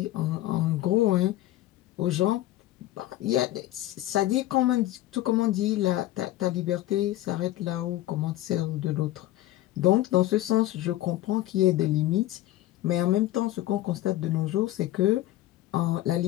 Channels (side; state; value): right; quieter; 15.2 dB